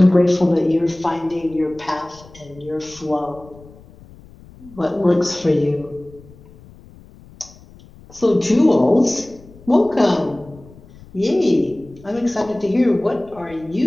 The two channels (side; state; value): left; noise; rumble, 22 dB below the sound